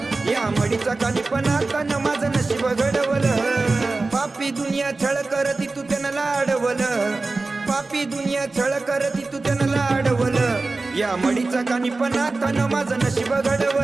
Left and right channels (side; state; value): left; quieter; 3.5 dB